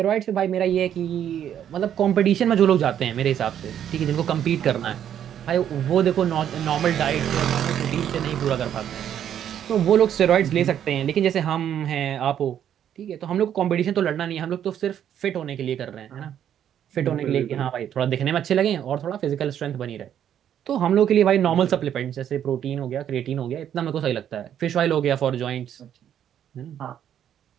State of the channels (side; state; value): left; quieter; 9.8 dB